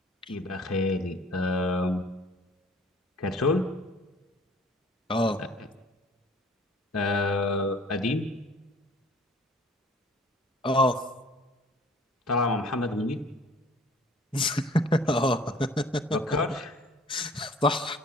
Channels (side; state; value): both; normal; correlation 0.51